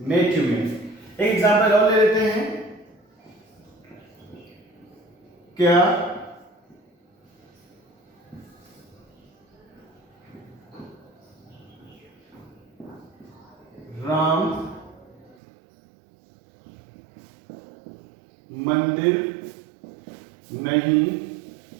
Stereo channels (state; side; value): drops out; left; at 15.4 s